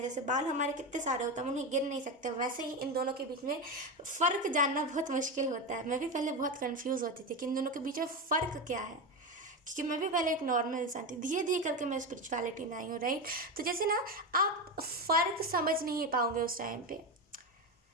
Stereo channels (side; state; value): both; normal; correlation 0.17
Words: जैसे बाल हमारे कितने सारे होते हैं, हम उन्हें गिन नहीं सकते, वैसे ही इन दोनों के बीच में फ़र्क जानना बहुत मुश्किल होता है। मैं भी पहले बहुत कंफ्यूज होती थी कि इन दोनों के बीच में फ़र्क क्या है, क्योंकि मैं भी पहले एक नॉर्मल इंसान थी, धीरे धीरे करके मैं स्पिरिचुअलिटी में आई हूँ, राइट। तो जैसे ना आप फ़र्क समझ नहीं पाओगे उस टाइम पे,